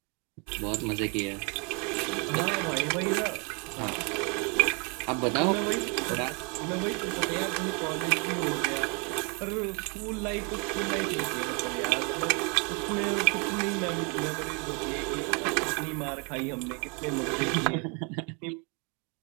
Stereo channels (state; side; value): quieter; left; 34.5 dB